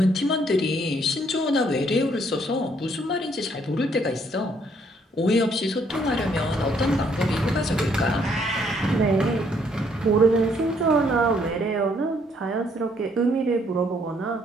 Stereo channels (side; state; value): both; normal; correlation 0.67